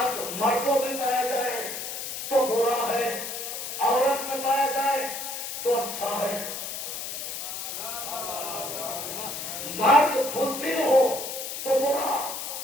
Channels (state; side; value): noise; left; hiss, 6 dB below the sound